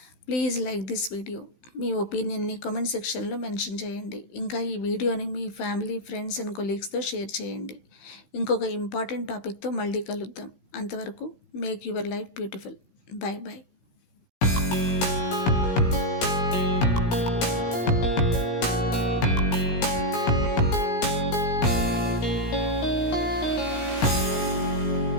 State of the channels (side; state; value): right; late; 17 ms